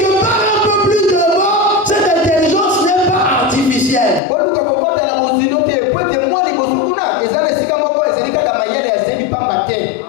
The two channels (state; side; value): drops out; right; at 4.2 s